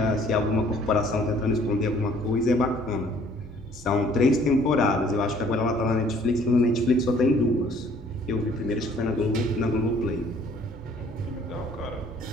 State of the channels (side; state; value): both; normal; correlation 0.58